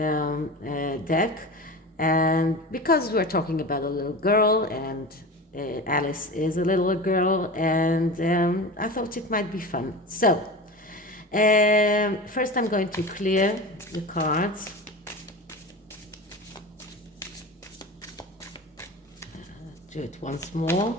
deck, and because we're talking about a little girl, and Alice is a little girl, and I thought it might be fun. So first I'm going to clear the cards. Do it once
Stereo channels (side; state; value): both; normal; correlation 0.31